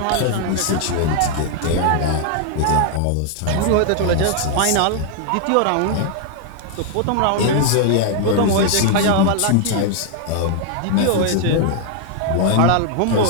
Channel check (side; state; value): both; different; correlation 0.00